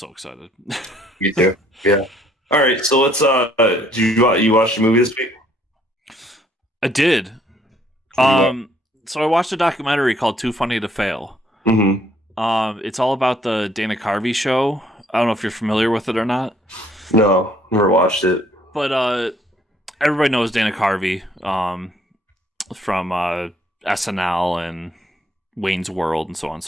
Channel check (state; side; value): normal; both; correlation 0.64